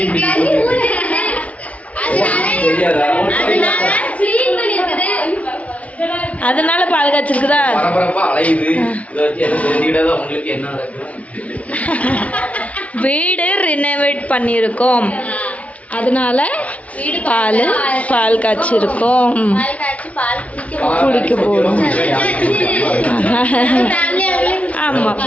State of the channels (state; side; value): late; right; 0.067 ms